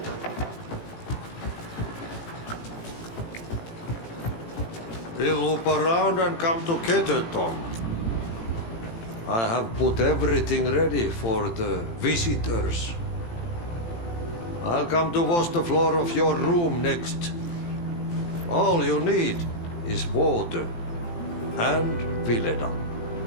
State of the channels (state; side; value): late; right; 18 ms